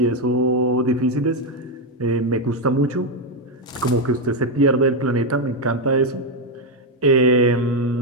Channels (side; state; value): both; normal; correlation 0.04